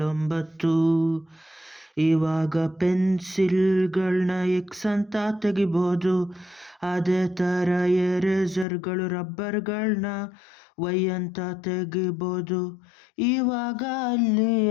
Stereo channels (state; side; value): drops out; right; at 8.7 s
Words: 9. ಇವಾಗ ಪೆನ್ಸಿಲ್ಗಳನ್ನ ಎಕ್ಸ್ ಅಂತ ತೆಗಿಬೋದು. ಅದೇ ಥರ ಎರೇಸರ್ಗಳು ರಬ್ಬರ್ಗಳನ್ನ ವೈ ಅಂತ ತೆಗಿಬೋದು. ಇವಾಗ ಅಲ್ಲಿ